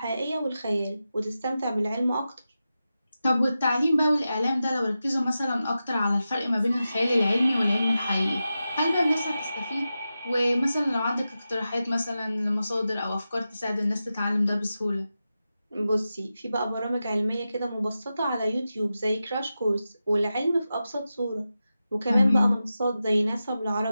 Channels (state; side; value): inverted; both; correlation -0.92